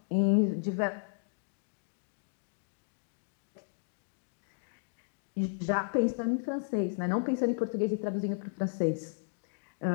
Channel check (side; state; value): right; silent; digital silence